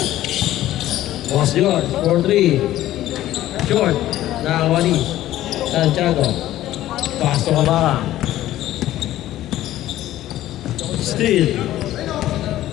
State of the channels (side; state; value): right; quieter; 14.1 dB